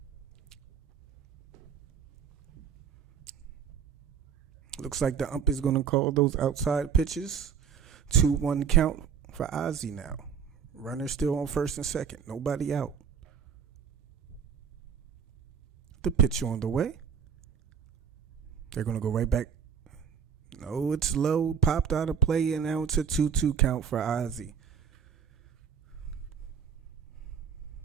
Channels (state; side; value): quieter; left; 7.5 dB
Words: Looks like the ump is going to call those outside pitches. 2-1 count for Ozzie now. Runner still on first and second. Nobody out. The pitch on the way. They're going to go right back. No, it's low. Popped out of play, and now it's a 2-2 count for Ozzie.